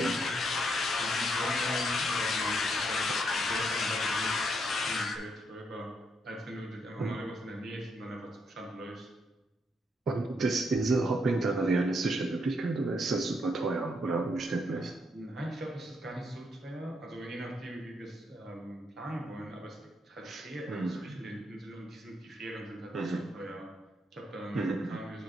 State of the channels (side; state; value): both; normal; correlation 0.76